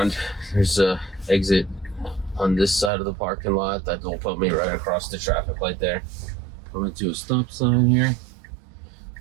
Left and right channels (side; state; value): left; drops out; at 2.9 s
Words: There's a exit on this side of the parking lot that will put me right across the traffic light there. Coming to a stop sign here.